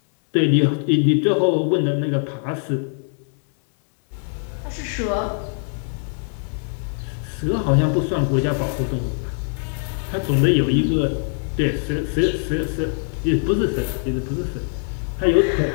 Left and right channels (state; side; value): silent; right; 62 dB below the other